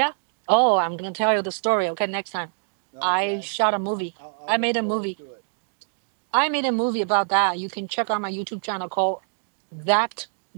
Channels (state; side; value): silent; left; digital silence